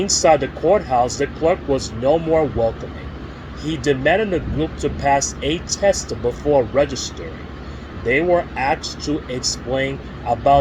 the courthouse, the clerk was no more welcoming. He demanded the group to pass a test before registering. They were asked to explain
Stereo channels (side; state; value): both; identical; correlation 1.00